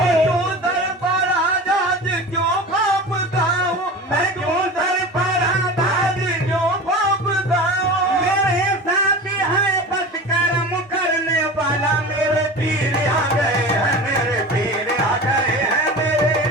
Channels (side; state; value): both; normal; correlation 0.33